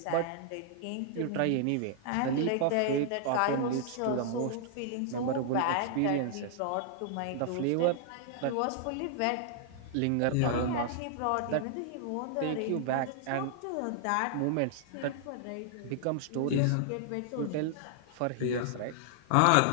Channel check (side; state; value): both; different; correlation -0.01